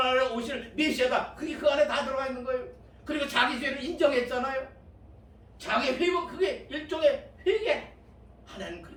오실 메시아다. 그게 그 안에 다 들어가 있는 거예요. 그리고 자기 죄를 인정했잖아요. 자기 회복, 그게 일종의 회개. 하나님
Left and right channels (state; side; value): identical; both; correlation 1.00